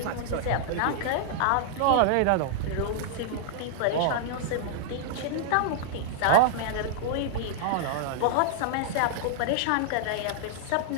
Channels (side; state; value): both; different; correlation -0.01